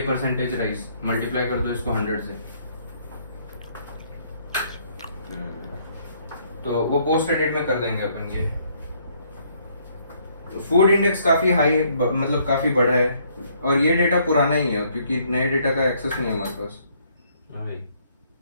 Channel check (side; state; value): both; inverted; correlation -0.67